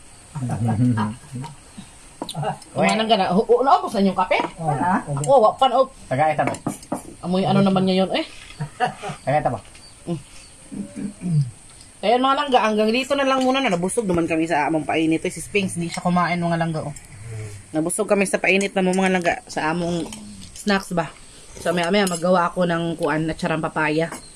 Kumanan ka na. Naubos na yung kape? Ako, wapan o. Tagay ta ba. Amoy ano naman ngayon eh. Tagay ta ba. Kaya mga langga, hanggang dito na lang muna na. Nabusog naman kami sa among painit. Si Spinks, hindi siya kumain mga langga. Oh. Nabusog kami sa painit na mga langga sa among snacks ba. So, maya magawa ako ng kuan na charang papaya.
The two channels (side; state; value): both; identical; correlation 1.00